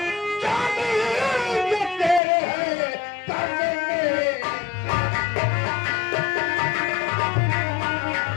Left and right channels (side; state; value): right; drops out; at 2.2 s